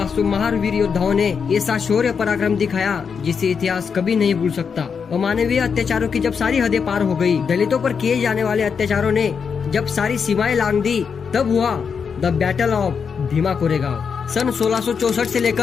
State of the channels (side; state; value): right; quieter; 6.2 dB